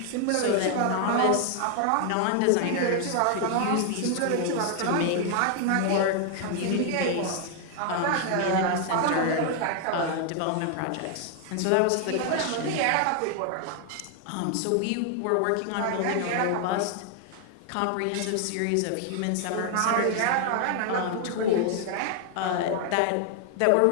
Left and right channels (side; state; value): both; different; correlation 0.00